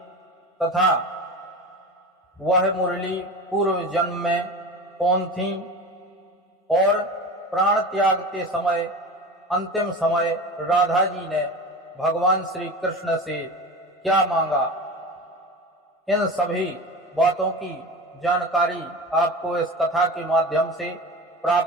तथा वह मुरली पूर्व जन्म में कौन थी और प्राण त्याग के समय अंतिम समय राधा जी ने भगवान श्री कृष्ण से क्या मांगा। इन सभी बातों की जानकारी आपको इस कथा के माध्यम से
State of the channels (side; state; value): both; normal; correlation 0.30